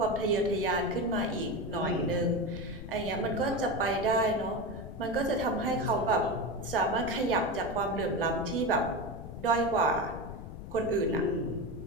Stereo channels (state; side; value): noise; left; rumble, 11 dB below the sound